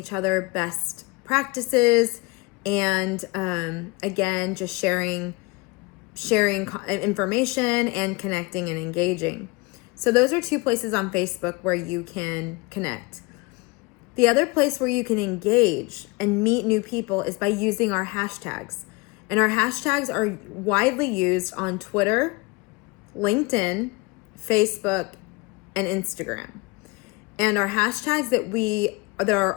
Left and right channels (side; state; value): right; quieter; 26.5 dB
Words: other best practices and again, just sharing information and connecting and engaging. So those are two places on Facebook where you can connect. The other place where you can engage and meet new people is by using our hashtags. And our hashtags are widely used on Twitter, LinkedIn, Facebook, and Instagram. And our hashtags that are